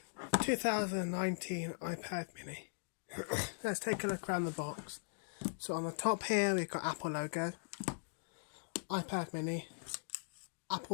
2019 iPad mini. Let's take a look around the box. So on the top here, we've got Apple logo, iPad mini,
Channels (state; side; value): silent; right; digital silence